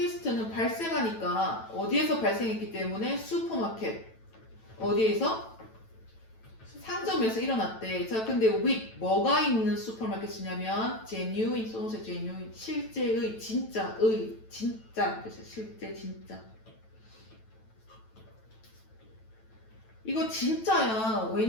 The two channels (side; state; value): right; late; 9.1 ms